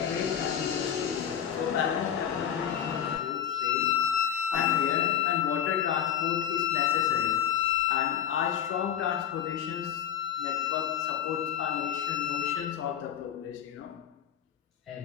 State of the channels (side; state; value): right; quieter; 9.5 dB